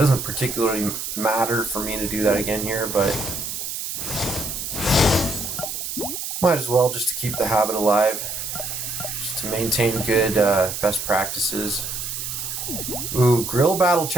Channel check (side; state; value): right; noise; hiss, 5 dB below the sound